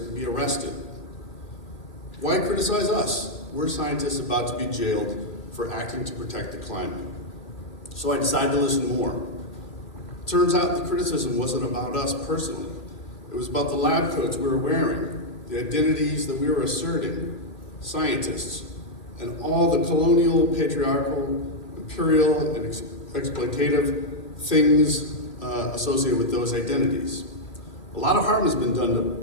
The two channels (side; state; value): right; late; 2.4 ms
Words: be arrested. Why criticize us? We're scientists about to be jailed for acting to protect the climate. So I decided to listen more. Turns out the criticism wasn't about us personally. It was about the lab coats we were wearing, the identities that we were asserting, scientists, and all the colonial, patriarchal, imperial, and exploitative things associated with those identities. A lot of harm has been done